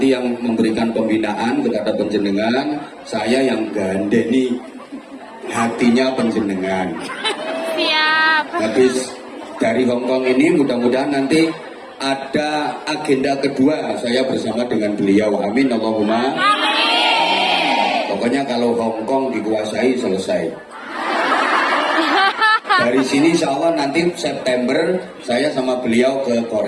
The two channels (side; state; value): both; identical; correlation 1.00